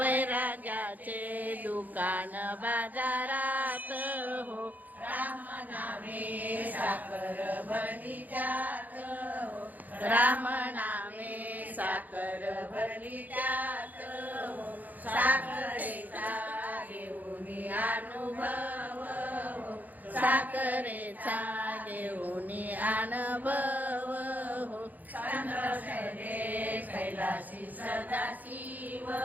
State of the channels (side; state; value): left; late; 0.082 ms